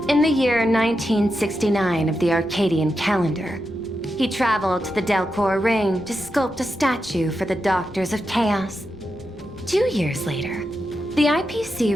the year 1969 of the Arcadian calendar, he traveled to the Delcor Ring to sculpt a statue for the Doctors of Chaos. 2 years later, the IPC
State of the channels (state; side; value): noise; left; rumble, 22 dB below the sound